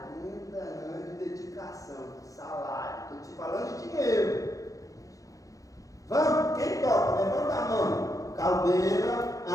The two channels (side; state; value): right; late; 0.16 ms